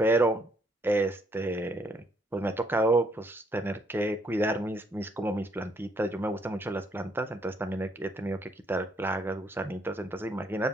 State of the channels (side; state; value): both; normal; correlation 0.69